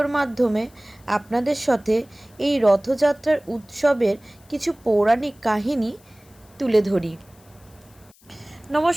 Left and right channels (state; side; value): noise; left; hiss, 29 dB below the sound